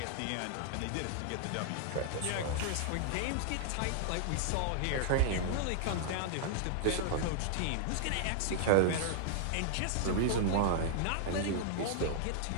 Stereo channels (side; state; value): both; different; correlation -0.01